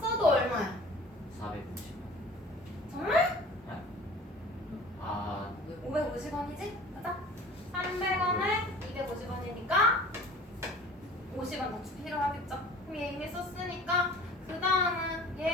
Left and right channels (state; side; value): normal; both; correlation 0.45